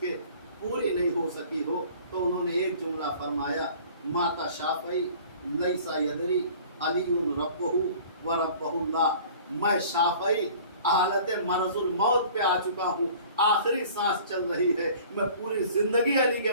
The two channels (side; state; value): both; inverted; correlation -0.48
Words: पूरी नहीं हो सकी हो। तो उन्होंने एक जुमला फरमाया, माता शाफई लैसा यदरी अलीउन रब्बहु व रब्बहुल्लाह। मैं शाफई हालत मरजुल मौत पे आ चुका हूँ, आखिरी सांस चल रही है। मैं पूरी जिंदगी अली के